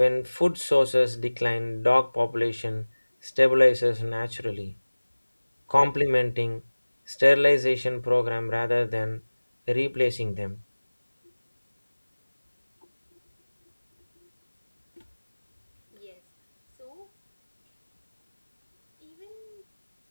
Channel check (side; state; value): both; inverted; correlation -1.00